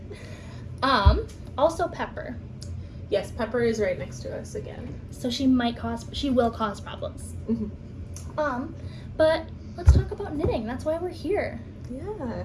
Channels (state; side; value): identical; both; correlation 1.00